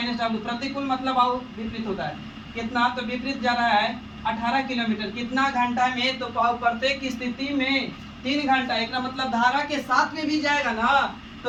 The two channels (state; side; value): identical; both; correlation 1.00